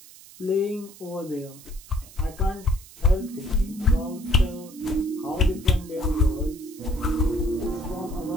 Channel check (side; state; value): right; noise; hiss, 20 dB below the sound